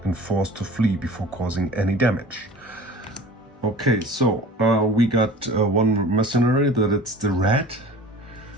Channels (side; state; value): both; normal; correlation 0.41